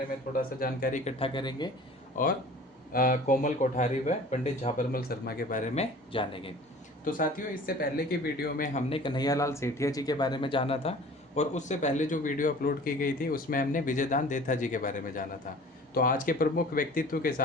में थोड़ा सा जानकारी इकट्ठा करेंगे और कोमल कोठारी व पंडित झाबरमल शर्मा के बारे में जानेंगे। तो साथियों, इससे पहले की वीडियो में हमने कन्हैयालाल सेठिया जी के बारे में जाना था, और उससे पहले जो वीडियो अपलोड की गई थी उसमें हमने विजयदान देथा जी के बारे में जाना था। तो आज के प्रमुख व्यक्तित्व के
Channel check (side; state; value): both; normal; correlation 0.45